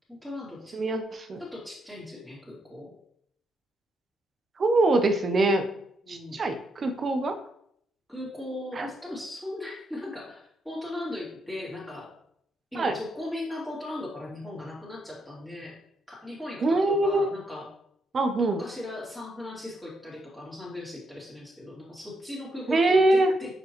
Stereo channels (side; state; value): both; normal; correlation 0.79